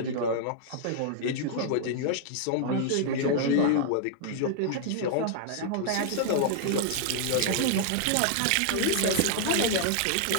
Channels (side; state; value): both; different; correlation -0.01